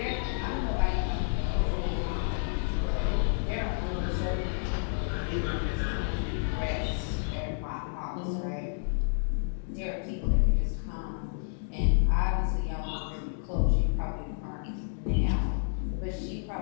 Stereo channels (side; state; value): right; silent; digital silence